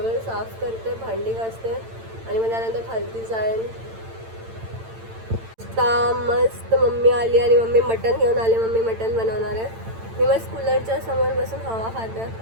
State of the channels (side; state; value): left; late; 8.9 ms